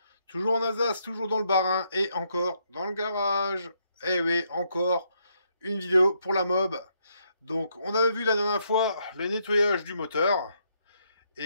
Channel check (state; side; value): inverted; both; correlation -0.75